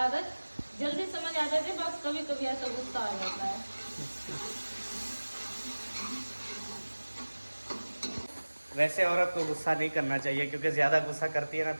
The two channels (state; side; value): inverted; both; correlation -1.00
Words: जल्दी समझ आ जाती है, बस कभी कभी ऐसा गुस्सा आ जाता है। वैसे औरत को गुस्सा नहीं करना चाहिए क्योंकि ज्यादा गुस्सा करती है ना